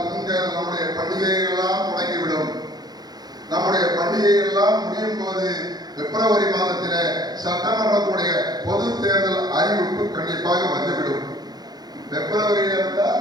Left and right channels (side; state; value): left; late; 0.19 ms